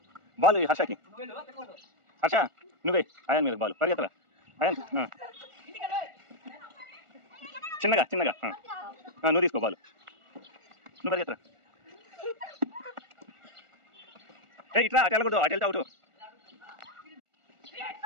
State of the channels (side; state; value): left; late; 1.4 ms